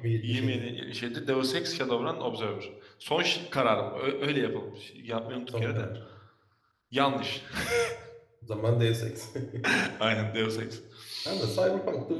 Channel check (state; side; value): identical; both; correlation 1.00